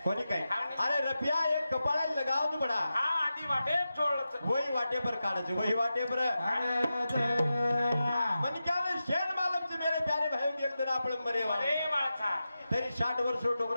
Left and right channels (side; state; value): both; inverted; correlation -0.92